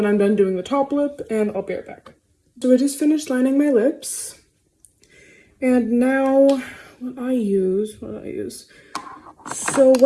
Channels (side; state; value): both; identical; correlation 1.00